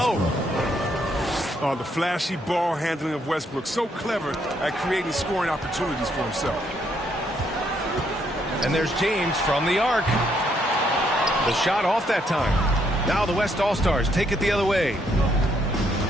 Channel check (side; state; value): both; normal; correlation 0.73